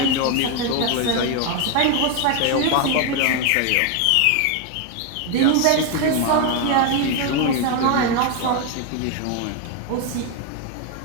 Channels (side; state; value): both; different; correlation 0.01